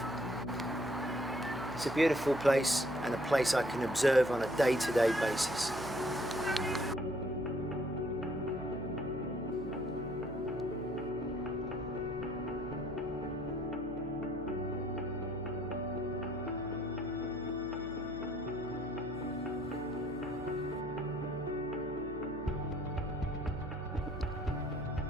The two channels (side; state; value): right; noise; hum, 13 dB below the sound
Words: It's a beautiful place and a place I can observe on a day-to-day basis.